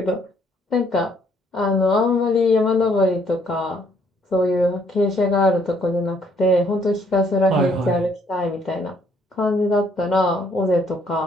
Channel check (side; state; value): both; normal; correlation 0.66